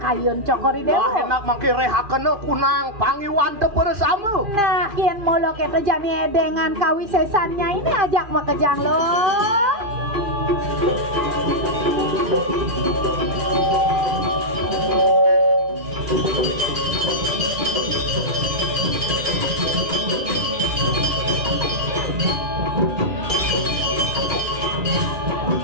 kayun cokori dewa. Wah enak mangke rehakena kunang pangiwan teu bersama. Nah, kian molo kita jani edengan kawisesannya ini ajak makejang lo.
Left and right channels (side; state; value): left; late; 2.5 ms